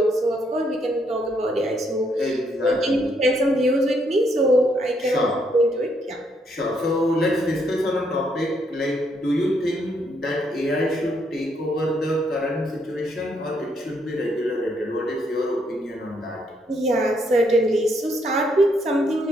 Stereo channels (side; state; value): both; normal; correlation 0.74